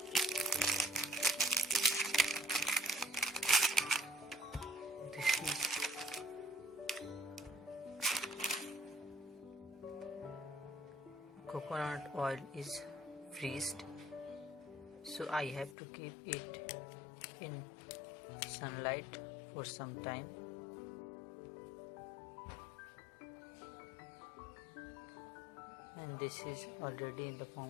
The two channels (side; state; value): right; drops out; at 15.8 s